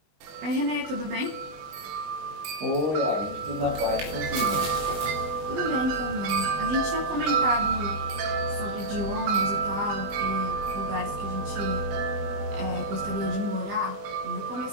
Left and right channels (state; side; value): late; left; 20 ms